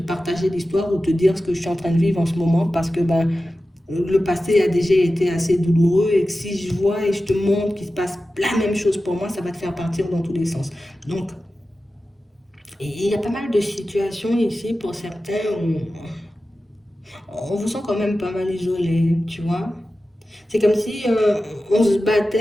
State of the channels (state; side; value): normal; both; correlation 0.94